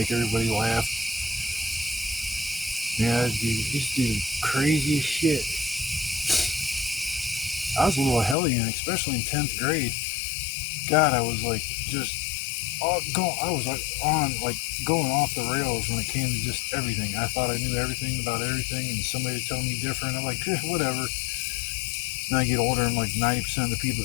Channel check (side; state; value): right; drops out; at 8.3 s